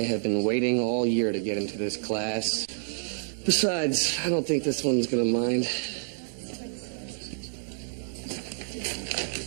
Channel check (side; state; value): left; silent; digital silence